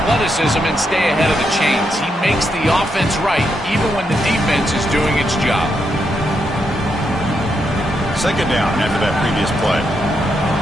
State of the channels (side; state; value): both; normal; correlation 0.81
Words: and stay ahead of the chains. He makes the offense right, even when the defense is doing its job. Second down after that previous play.